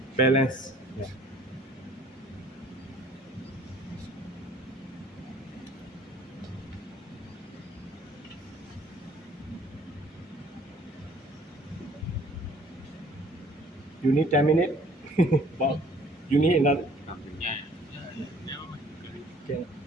Balance. Yeah. You need 10 minutes. Well, you need another. Okay.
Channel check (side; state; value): both; normal; correlation 0.56